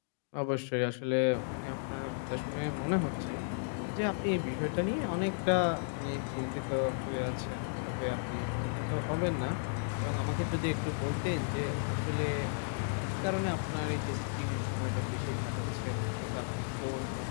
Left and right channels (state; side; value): silent; right; digital silence